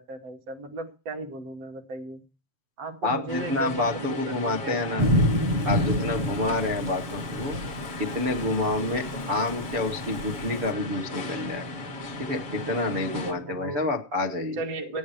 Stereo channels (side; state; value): left; late; 7.2 ms